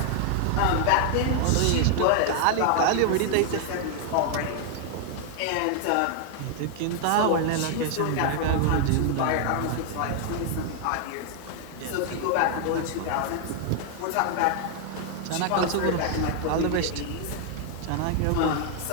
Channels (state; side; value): different; both; correlation 0.00